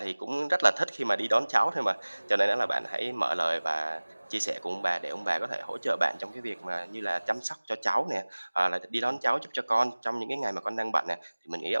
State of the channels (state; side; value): inverted; both; correlation -1.00